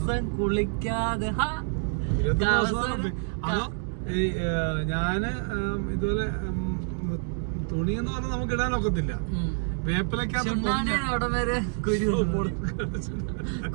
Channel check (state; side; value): silent; left; 60 dB below the other